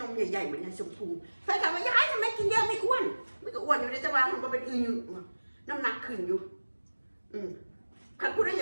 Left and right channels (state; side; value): inverted; both; correlation -1.00